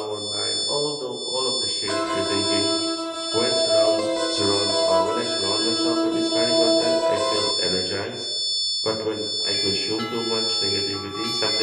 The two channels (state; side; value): identical; both; correlation 1.00